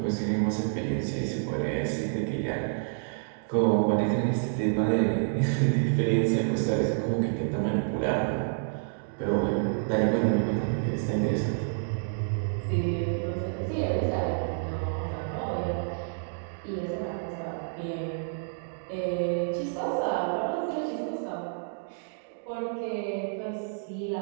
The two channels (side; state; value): left; silent; digital silence